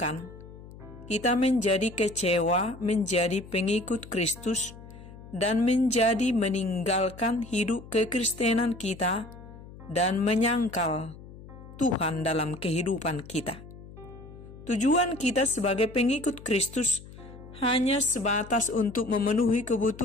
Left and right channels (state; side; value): noise; left; hum, 17 dB below the sound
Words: kita menjadi kecewa, menjadi pengikut Kristus, dan menjadi meninggalkan hidup kekristenan kita dan menyangkal Tuhan dalam kehidupan kita. Tujuan kita sebagai pengikut Kristus hanya sebatas untuk memenuhi